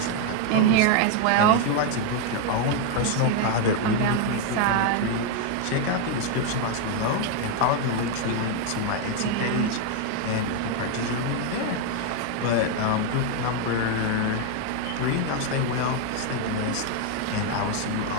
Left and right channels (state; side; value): different; both; correlation 0.01